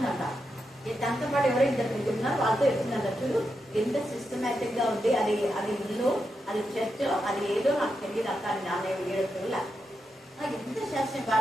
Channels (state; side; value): normal; both; correlation 0.86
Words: దాంతో పాటు ఎవరో 2 ఉన్నారు, వాళ్ళతో చెప్తుందంట, చూడు ఎంత సిస్టమేటిక్ గా ఉంది, అది ఇల్లు, అది చర్చ్, అది ఏదో నాకు తెలియదు అక్క అని నాన్న 7 రోజుల ఎంత శాస్త్రం